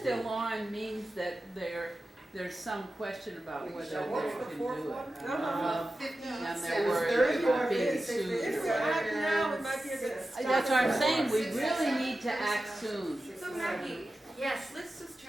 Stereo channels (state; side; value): normal; both; correlation 0.93